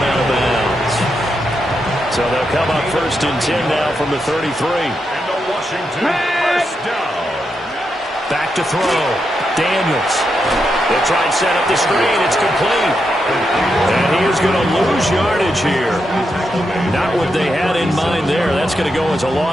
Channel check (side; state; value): both; normal; correlation 0.84